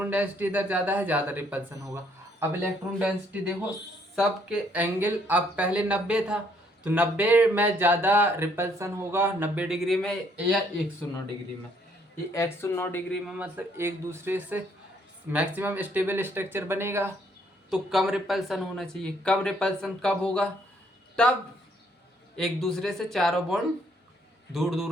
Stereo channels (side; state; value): both; normal; correlation 0.67